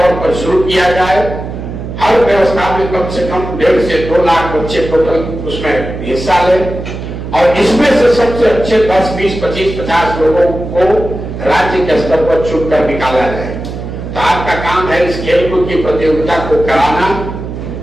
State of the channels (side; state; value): right; noise; hum, 8 dB below the sound